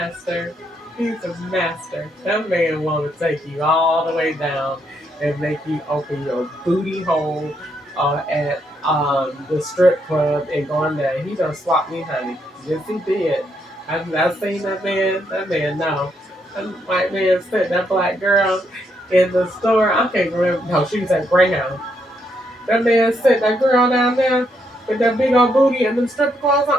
He's a master. That man want to take you all the way down and make you open your booty hole at the strip club and go in there. He done swapped me, honey. Yes, he did. I've seen that man. That man, no. That white man sent that black girl in the store. I can't remember. No, she was at Greyhound. That man sent that girl down there with that big old booty and them strip clothes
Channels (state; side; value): normal; both; correlation 0.76